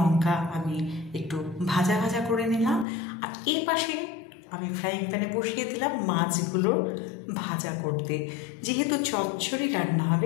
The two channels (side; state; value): right; drops out; at 2.9 s